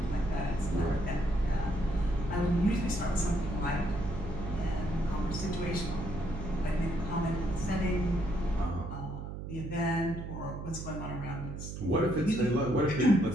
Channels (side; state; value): right; noise; hum, 8 dB below the sound